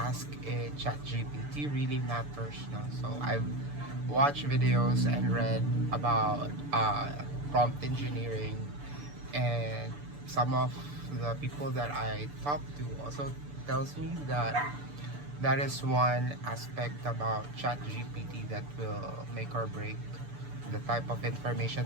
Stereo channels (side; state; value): left; late; 6.9 ms